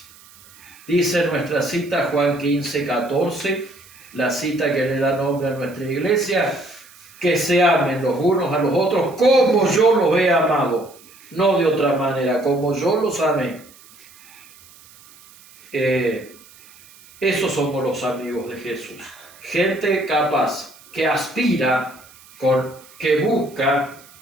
Dice nuestra cita Juan 15:14, la cita que le da nombre a nuestra iglesia, que se amen los unos a los otros como yo los he amado, no de otra manera, como yo los amé. Esos somos los amigos de Jesús. Gente capaz, que aspira, que busca,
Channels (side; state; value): right; noise; hiss, 24 dB below the sound